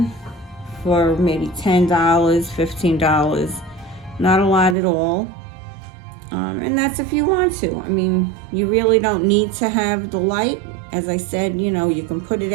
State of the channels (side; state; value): left; drops out; at 4.8 s